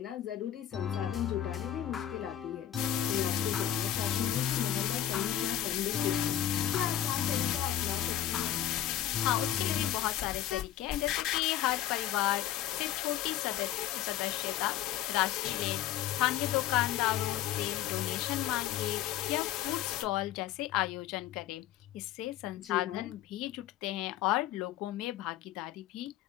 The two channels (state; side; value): quieter; right; 12.1 dB